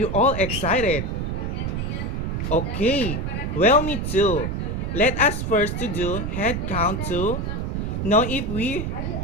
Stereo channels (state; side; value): noise; right; rumble, 2 dB below the sound